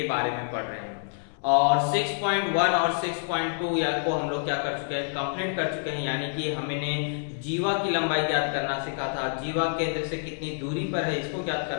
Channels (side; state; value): right; silent; 59 dB below the other